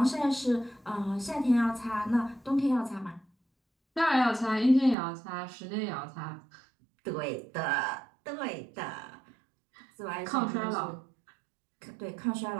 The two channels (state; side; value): drops out; left; at 5.0 s